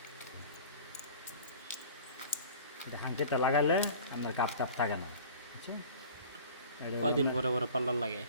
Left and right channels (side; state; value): both; inverted; correlation -0.43